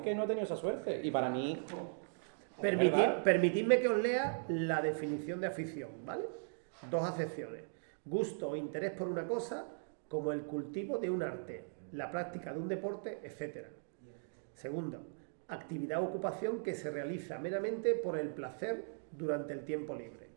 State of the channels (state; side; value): silent; left; digital silence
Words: que no he tenido esa suerte. Y para mí... Permitidme que os lea la definición de afición, ¿vale? Dos acepciones. Gusto o interés por una cosa, como el cultivo de un arte, la práctica de un deporte, etc. Segundo, actividad o ocupación que se realiza meramente por el placer durante el tiempo libre.